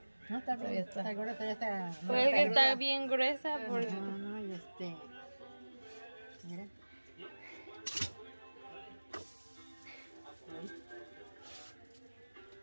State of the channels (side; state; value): both; inverted; correlation -1.00